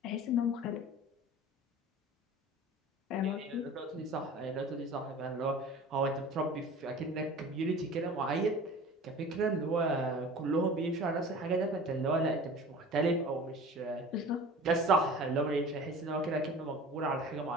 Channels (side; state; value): both; normal; correlation 0.40